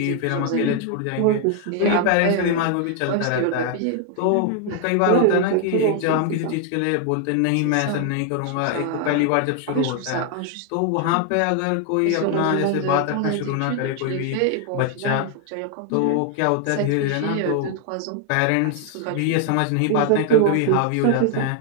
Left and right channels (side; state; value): both; different; correlation 0.00